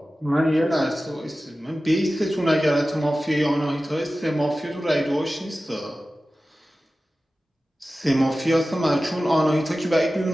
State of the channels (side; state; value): both; normal; correlation 0.95